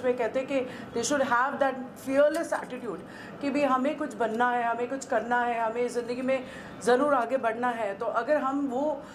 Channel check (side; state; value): both; identical; correlation 1.00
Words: में कहते हैं कि they should have that fearless attitude कि भी हमें कुछ बनना है, हमें कुछ करना है, हमें ज़िंदगी में ज़रूर आगे बढ़ना है। तो अगर हम वो